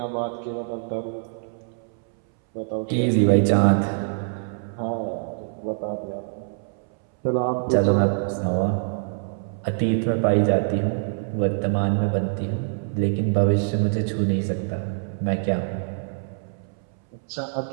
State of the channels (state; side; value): silent; left; 62 dB below the other